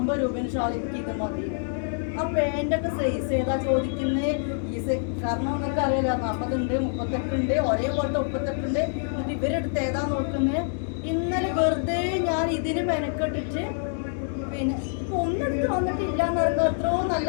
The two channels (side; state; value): right; silent; digital silence